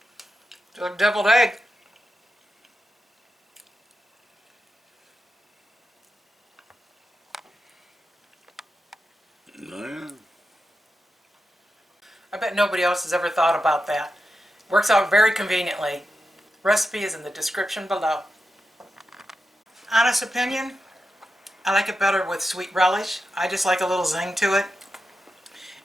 a deviled egg. I bet nobody else has ever thought about that. Works out very conveniently. Recipe is in the description below. Honest opinion, I like it better with sweet relish. I just like a little zing to it.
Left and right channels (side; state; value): both; normal; correlation 0.89